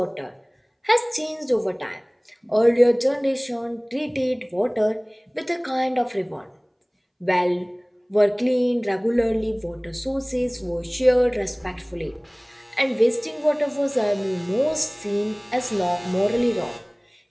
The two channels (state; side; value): identical; both; correlation 1.00